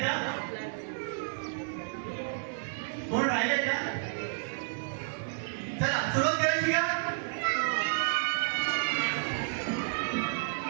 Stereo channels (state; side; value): silent; left; digital silence